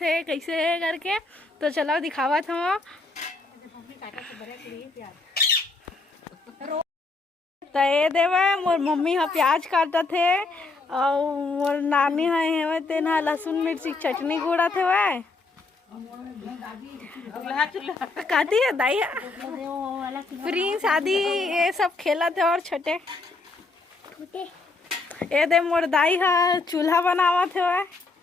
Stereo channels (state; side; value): quieter; right; 3.6 dB